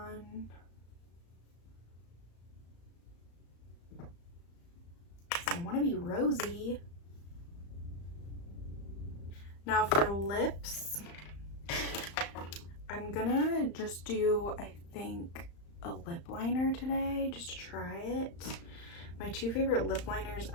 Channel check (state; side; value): late; right; 35 ms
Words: So I want to be rosy. Now for lips, I'm gonna just do, I think, a lip liner today just to try it. My two favorite lip liners